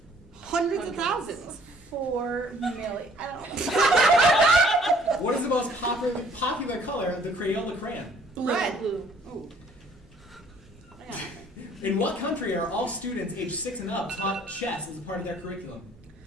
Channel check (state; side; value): normal; both; correlation 0.58